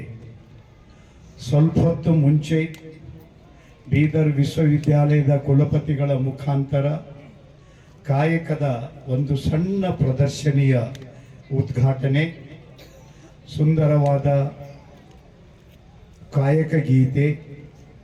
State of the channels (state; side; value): identical; both; correlation 1.00